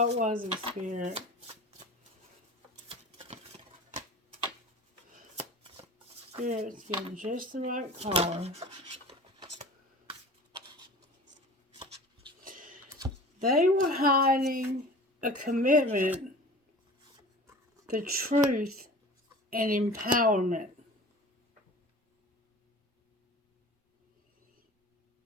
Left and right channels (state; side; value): normal; both; correlation 0.40